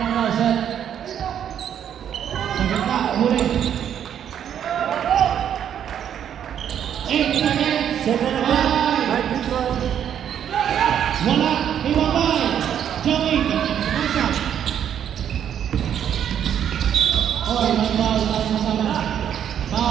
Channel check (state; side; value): quieter; left; 9.4 dB